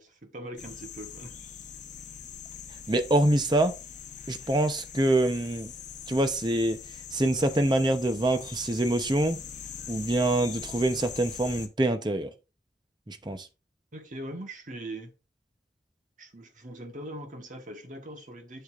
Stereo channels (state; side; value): normal; both; correlation 0.72